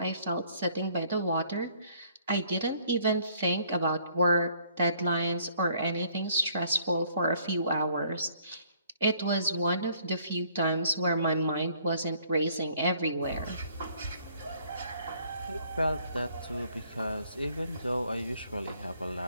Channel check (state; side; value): inverted; both; correlation -0.62